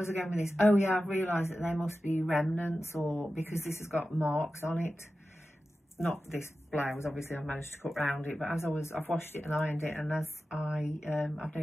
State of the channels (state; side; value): normal; both; correlation 0.93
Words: I going with this? Oh yeah, I've realised that they must be remnants, or because this has got marks on it. Not this blouse, obviously I've managed to cut round it, but as I've washed it and ironed it, and as I've